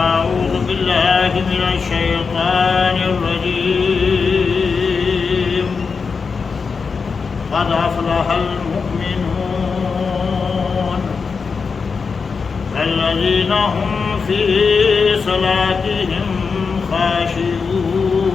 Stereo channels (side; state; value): right; quieter; 5.2 dB